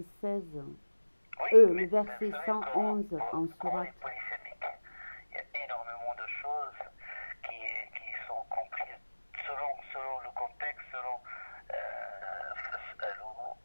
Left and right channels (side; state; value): both; inverted; correlation -1.00